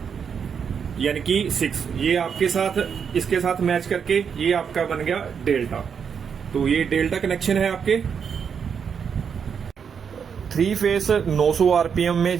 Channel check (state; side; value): quieter; left; 6.9 dB